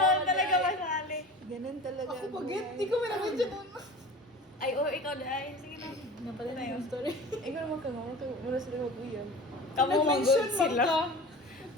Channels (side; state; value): both; normal; correlation 0.37